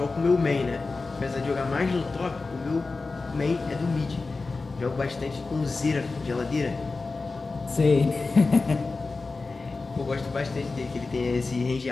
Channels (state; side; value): quieter; right; 3.8 dB